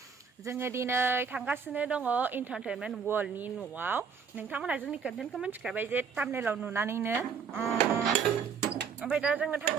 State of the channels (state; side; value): quieter; left; 6.3 dB